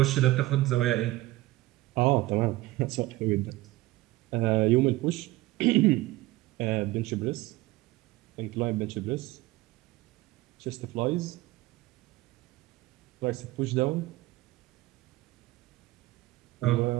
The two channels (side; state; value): left; quieter; 18.4 dB